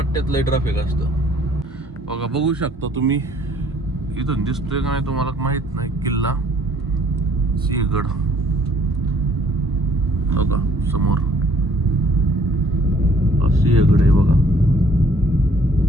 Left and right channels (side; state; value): both; normal; correlation 0.60